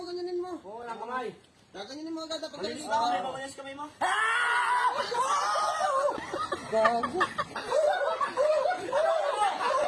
ganyanin mo. Oo, walang kamay. Ganyanin mo agad. Pagkalis ka. Mamaya kamay mo. Gago.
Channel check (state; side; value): identical; both; correlation 1.00